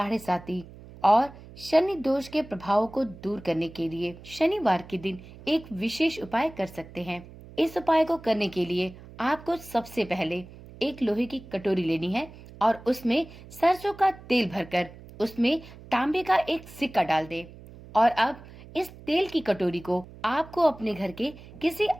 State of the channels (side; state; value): right; noise; hum, 18 dB below the sound